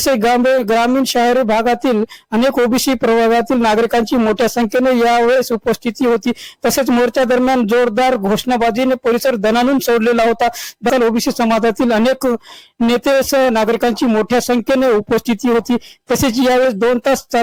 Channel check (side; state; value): both; identical; correlation 1.00